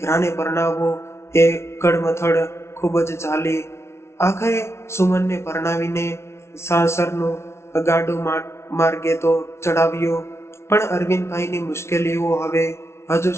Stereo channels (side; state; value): right; late; 0.13 ms